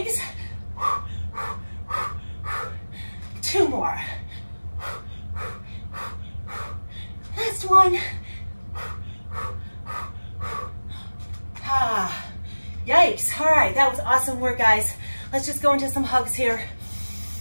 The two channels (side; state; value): both; inverted; correlation -1.00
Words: 2 more. Last one. Yikes. All right, that was awesome work, guys. Let's just go into some hugs here.